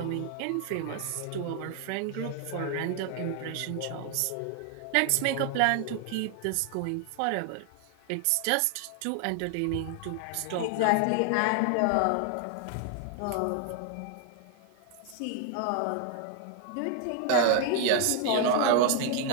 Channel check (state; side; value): different; both; correlation 0.00